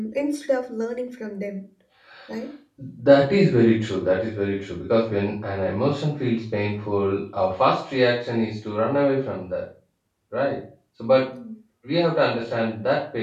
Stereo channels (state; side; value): identical; both; correlation 1.00